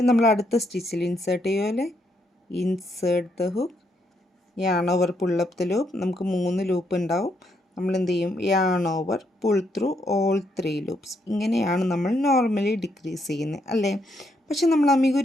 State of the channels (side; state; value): both; normal; correlation 0.76